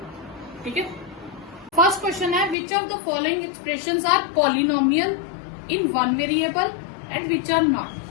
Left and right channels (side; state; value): right; drops out; at 2.6 s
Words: ठीक है। फर्स्ट क्वेश्चन है, which of the following expressions are polynomial in one variable and which are not,